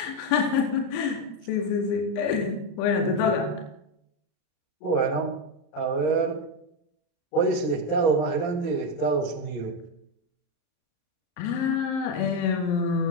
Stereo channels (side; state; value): right; late; 34 ms